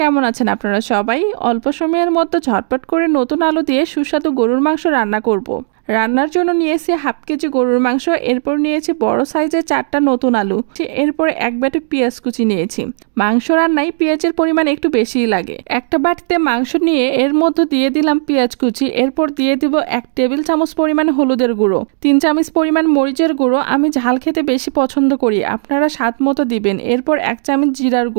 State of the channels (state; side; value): silent; left; digital silence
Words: আছেন আপনারা সবাই? অল্প সময়ের মধ্যে ঝটপট করে নতুন আলু দিয়ে সুস্বাদু গরুর মাংস রান্না করব। রান্নার জন্য নিয়েছি হাফ কেজি গরুর মাংস, এরপর নিয়েছি বড় সাইজের 4টা নতুন আলু, এরপর এক বাটি পেঁয়াজ কুচি নিয়েছি। মাংস রান্নায় পেঁয়াজের পরিমাণ একটু বেশিই লাগে। একটা বাটিতে মাংস নিয়ে এর মধ্যে দিয়ে দিলাম পেঁয়াজ কুচি, এরপর দিয়ে দিব 1 টেবিল চামচ পরিমাণ হলুদের গুঁড়ো, 3 চামচ পরিমাণ মরিচের গুঁড়ো, আমি ঝাল খেতে বেশি পছন্দ করি, আপনারা স্বাদ মতো দিবেন। এরপর 1 চামচ জিরার